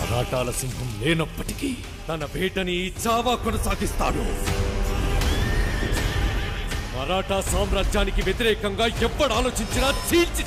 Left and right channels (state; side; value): identical; both; correlation 1.00